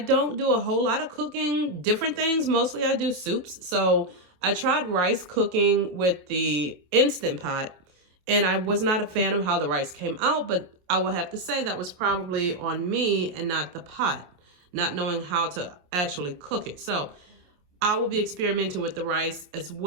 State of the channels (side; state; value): left; late; 28 ms